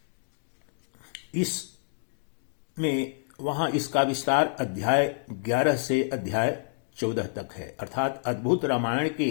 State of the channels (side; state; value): right; silent; digital silence